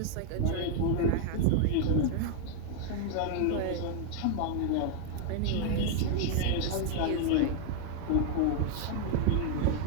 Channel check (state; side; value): different; both; correlation 0.00